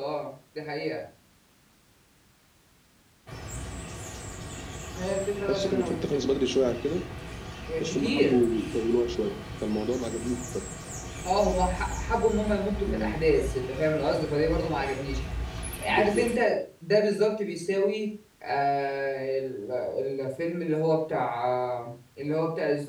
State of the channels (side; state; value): both; identical; correlation 1.00